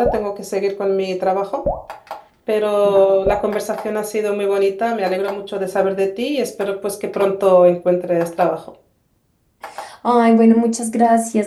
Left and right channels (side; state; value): both; identical; correlation 1.00